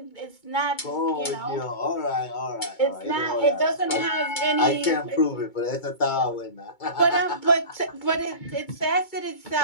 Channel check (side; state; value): right; late; 2.2 ms